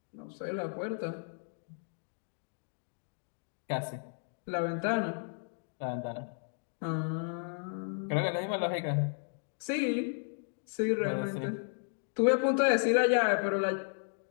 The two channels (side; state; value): right; silent; digital silence